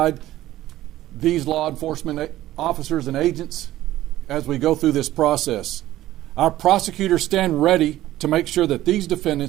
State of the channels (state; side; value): quieter; left; 14.7 dB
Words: these law enforcement officers and agents as we go through this process. Our prosecutors stand ready to make sure that these